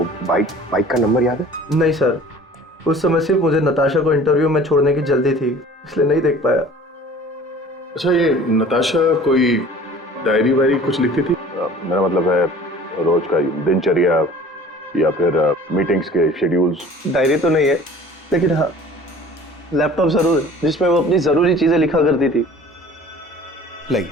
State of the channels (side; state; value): both; normal; correlation 0.46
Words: बाइक का नंबर याद है? नहीं सर, उस समय सिर्फ मुझे नताशा को इंटरव्यू में छोड़ने की जल्दी थी, इसलिए नहीं देख पाया। अच्छा, ये नताशा कोई डायरी वायरी कुछ लिखती थी? मेरा मतलब है रोज का दिनचर्या या फिर मीटिंग्स के शेड्यूल्स। डायरी तो नहीं है, लेकिन हाँ लैपटॉप जरूर है जिसमें वो अपनी जरूरी चीजें लिखा करती थी।